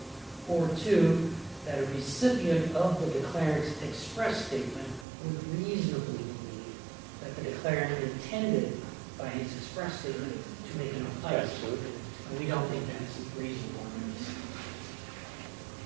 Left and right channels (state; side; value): drops out; left; at 5.1 s